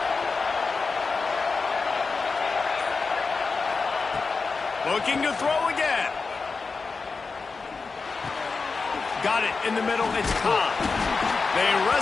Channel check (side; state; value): right; quieter; 4.4 dB